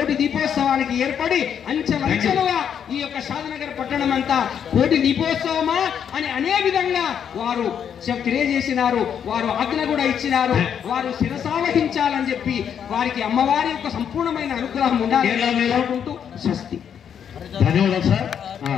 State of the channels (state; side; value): quieter; right; 8.3 dB